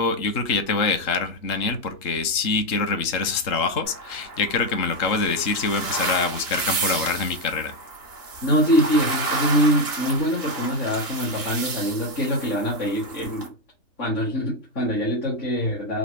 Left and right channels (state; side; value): late; right; 3.7 ms